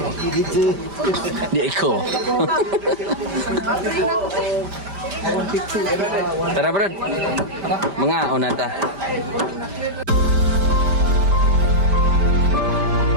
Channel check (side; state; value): left; late; 5.1 ms